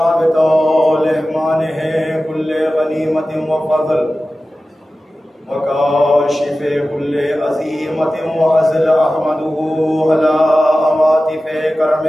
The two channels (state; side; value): normal; both; correlation 0.95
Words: بطول إحمانه كل غنيمة وفضل وكاشف كل عزيمة وعزل. أحمده على عواطف